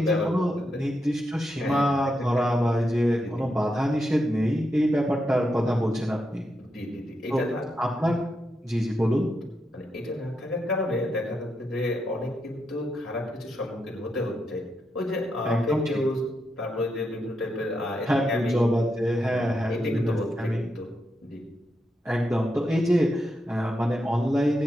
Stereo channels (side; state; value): both; normal; correlation 0.84